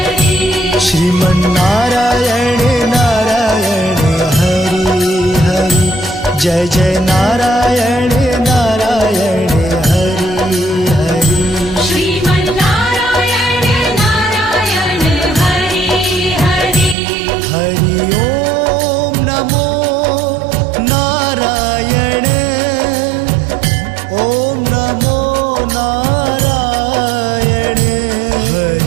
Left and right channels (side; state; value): left; drops out; at 16.9 s